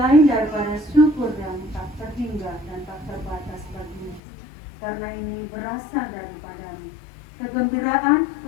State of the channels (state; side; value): drops out; right; at 4.2 s